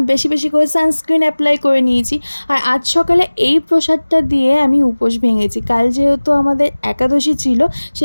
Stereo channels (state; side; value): inverted; both; correlation -1.00